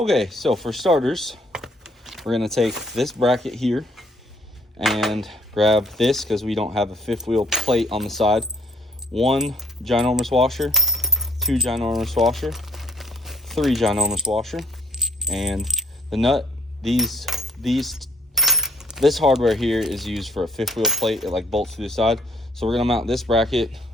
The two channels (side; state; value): both; normal; correlation 0.62